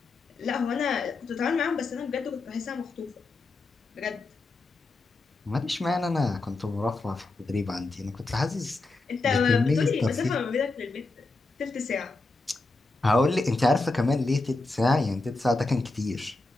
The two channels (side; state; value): right; quieter; 3.3 dB